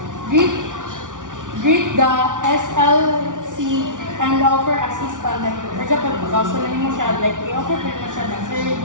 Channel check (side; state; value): left; late; 0.87 ms